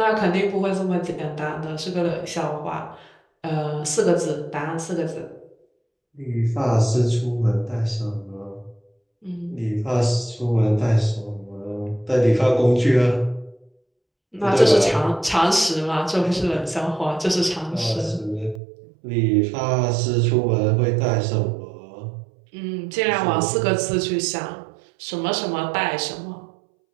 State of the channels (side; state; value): left; drops out; at 18.6 s